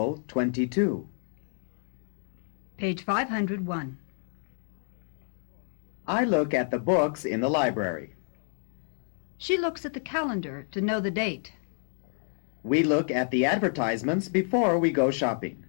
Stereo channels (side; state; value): right; silent; digital silence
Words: 22. Page 501. I look at the books in the library. She looks at the calendar to know the date. We look at the advertisements before we go shopping.